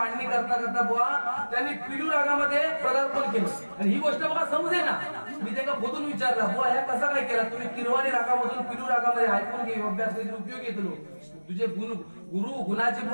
करता करता बुवा त्यांनी पिलू रागामध्ये पदार्पण केलं. आणि ही गोष्ट बघा समजे ना, मी त्यांना बोलून विचारला बुवा ह्या कसा काय केला तुम्ही किरवाणी रागामधून पिलू रागामध्ये ऐकून घे, अभ्यास काहीतरी उपयोग येतो. तुझे गुरु गुणाजी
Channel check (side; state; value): both; inverted; correlation -1.00